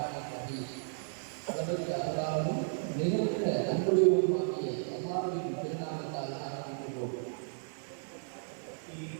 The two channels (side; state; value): left; silent; 55 dB below the other